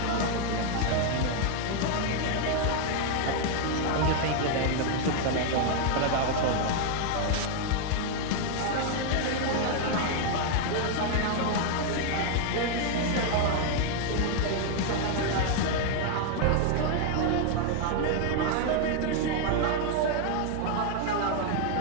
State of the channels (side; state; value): both; different; correlation 0.00